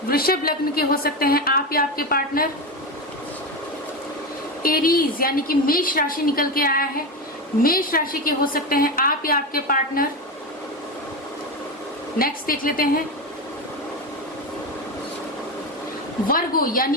वृषभ लग्न के हो सकते हैं आप या आपके पार्टनर। एरीज, यानी कि मेष राशि निकल के आया है। मेष राशि के हो सकते हैं आप या आपके पार्टनर। नेक्स्ट देख लेते हैं वर्गो, यानी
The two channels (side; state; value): both; normal; correlation 0.17